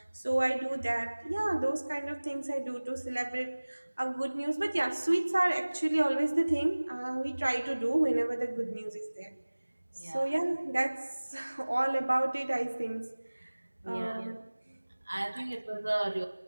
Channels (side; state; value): both; inverted; correlation -1.00